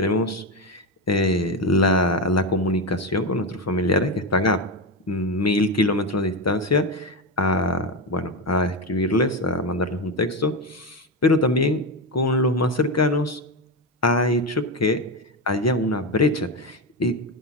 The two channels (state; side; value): normal; both; correlation 0.14